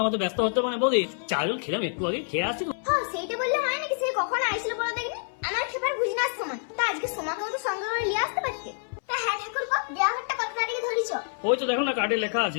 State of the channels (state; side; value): silent; right; 60 dB below the other